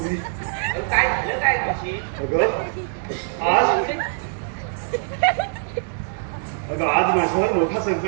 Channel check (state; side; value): silent; left; digital silence